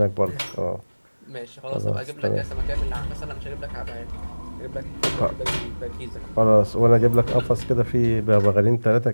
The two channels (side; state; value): both; inverted; correlation -1.00